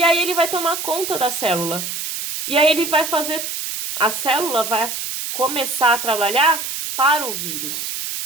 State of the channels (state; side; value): noise; right; hiss, 5 dB below the sound